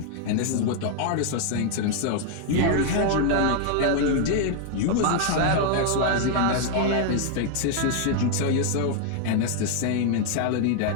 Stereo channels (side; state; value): both; different; correlation 0.00